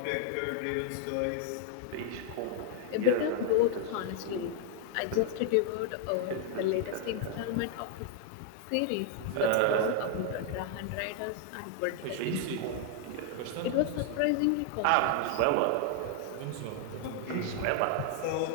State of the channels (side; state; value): both; different; correlation 0.00